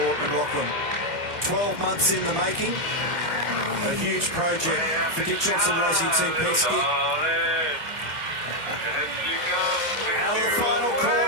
McLaughlin. 12 months in the making. A huge project for Dick Johnson Racing Team Penske. Out of the final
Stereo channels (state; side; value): late; left; 2.1 ms